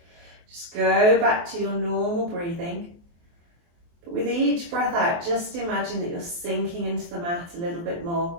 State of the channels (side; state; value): left; late; 23 ms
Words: Just go back to your normal breathing. But with each breath out, just imagine that you're sinking into the mat a little bit more.